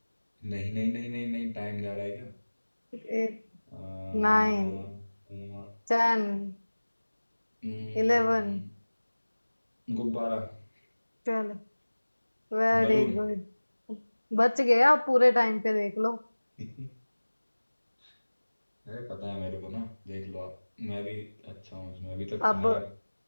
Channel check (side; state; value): both; inverted; correlation -1.00